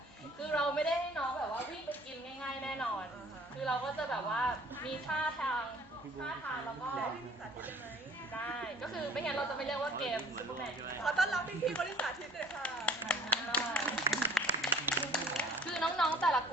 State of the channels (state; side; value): normal; both; correlation 0.52